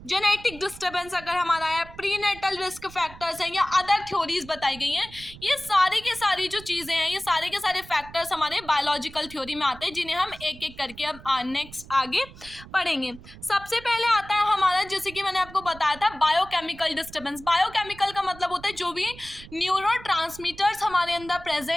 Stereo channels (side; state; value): right; noise; rumble, 18 dB below the sound